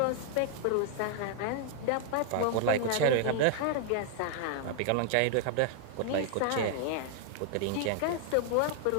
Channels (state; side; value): different; both; correlation 0.00